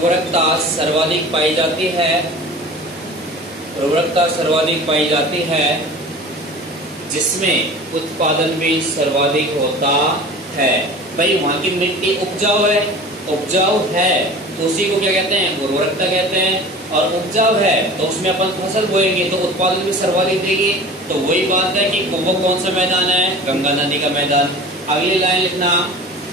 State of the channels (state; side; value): normal; both; correlation 0.39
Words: सर्वाधिक पाई जाती है, उर्वरकता सर्वाधिक पाई जाती है, जिसमें उत्पादन भी सर्वाधिक होता है। भाई वहां की मिट्टी उपजाऊ है, उपजाऊ है तो उसी को क्या कहते हैं, उर्वरकता कहते हैं। और उपजाऊ है तो उसमें अपन फसल बोएंगे तो उत्पादन भी सर्वाधिक देगी। तो वही बात है कि वो कौन सा मैदान है, गंगा नदी का मैदान। अगली लाइन लिखना,